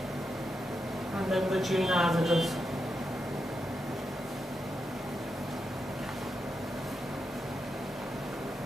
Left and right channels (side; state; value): both; normal; correlation 0.86